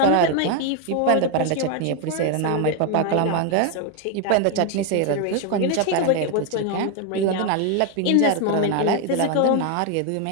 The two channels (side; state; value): both; different; correlation 0.01